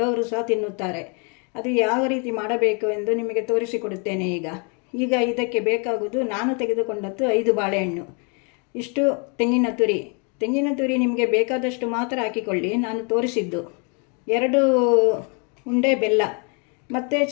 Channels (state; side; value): quieter; right; 36.3 dB